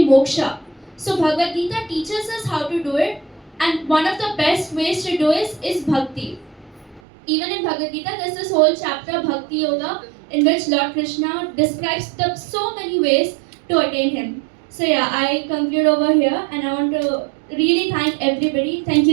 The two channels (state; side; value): drops out; left; at 7.0 s